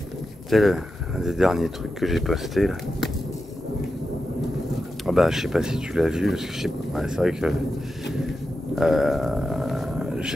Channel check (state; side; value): normal; both; correlation 0.90